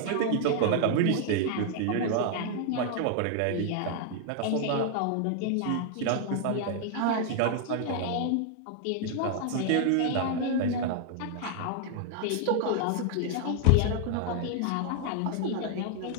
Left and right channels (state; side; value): different; both; correlation 0.00